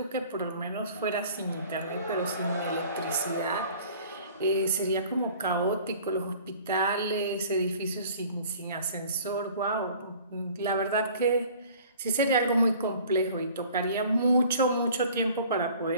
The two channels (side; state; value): both; inverted; correlation -0.49